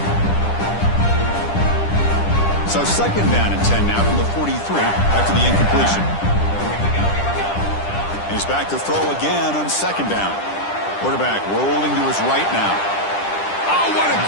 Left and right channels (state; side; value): late; right; 10 ms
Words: So second down and 10 now from the 43 after the incompletion. He's back to throw again on second down. Quarterback rolling to his right now. Oh, what a